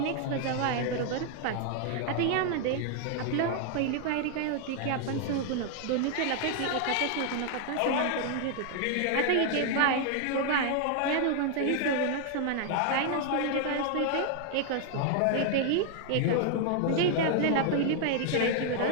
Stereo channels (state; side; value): different; both; correlation 0.00